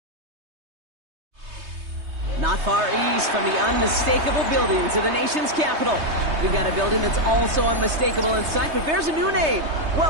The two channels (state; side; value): late; left; 3.2 ms